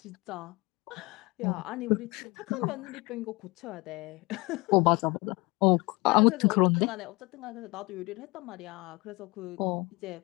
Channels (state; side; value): quieter; right; 24.3 dB